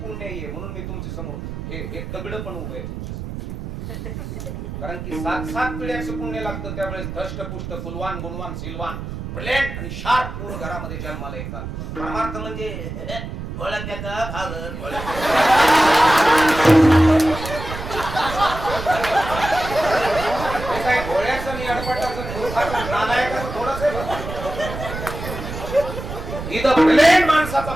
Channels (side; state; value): right; noise; rumble, 8 dB below the sound